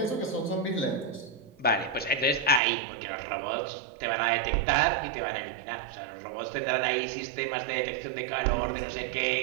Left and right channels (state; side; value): drops out; left; at 2.6 s